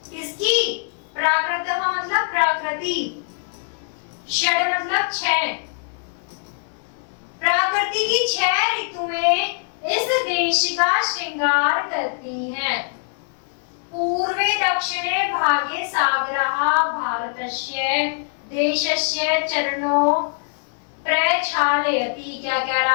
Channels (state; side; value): silent; right; 59 dB below the other